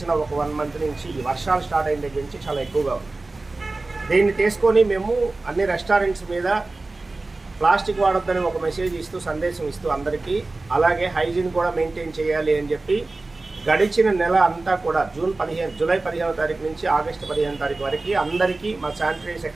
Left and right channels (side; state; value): left; quieter; 3.3 dB